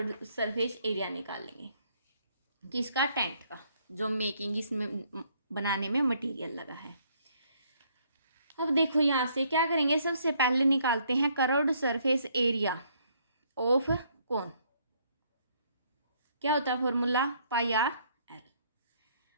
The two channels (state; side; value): inverted; both; correlation -0.67